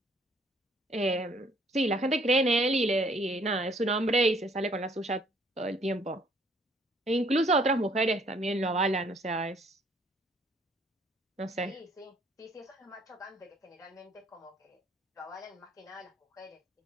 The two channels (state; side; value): normal; both; correlation 0.62